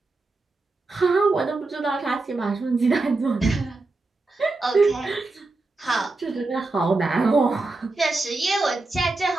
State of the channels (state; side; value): quieter; left; 3.4 dB